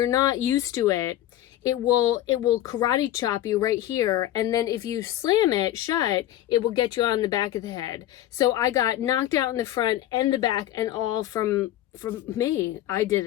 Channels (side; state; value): right; quieter; 13.5 dB